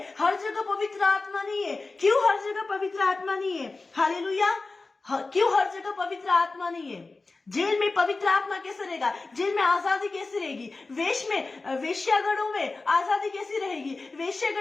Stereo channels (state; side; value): quieter; right; 3.6 dB